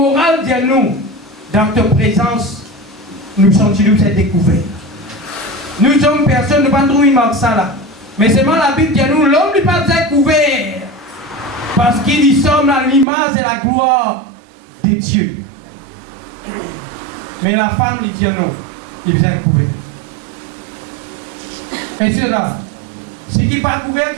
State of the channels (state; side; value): drops out; left; at 13.1 s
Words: dis-nous, dans ta présence, nous sommes cette découverte. Nous sommes personne, nous ne pas trouver ça là. Mais seulement la Bible dit nous, l'homme n'est pas découvert. Parce qu'il y sommes à l'image et la gloire de Dieu. Mais la femme lui dit non, il vient découvert. Et c'est là. Ce qui n'est pas couvert,